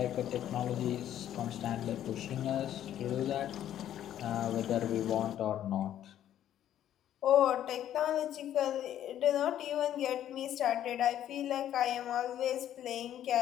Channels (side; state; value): right; quieter; 11.3 dB